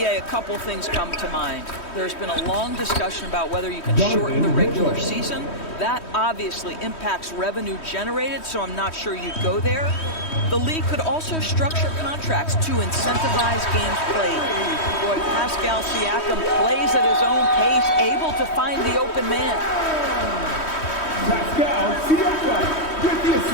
a couple things come to mind. There's been a long discussion about whether you can shorten the regular season. That obviously impacts revenue generated, so I'm not sure you'd go there. The league could also structure contracts to incentivize games played. Boy, Pascal Siakam plays at his own pace, able to find the open man.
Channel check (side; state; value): right; late; 3.1 ms